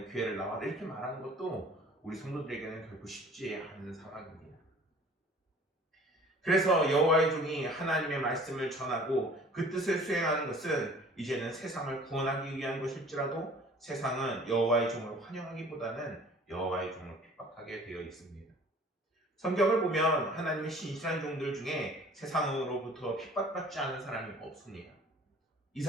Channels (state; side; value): normal; both; correlation 0.49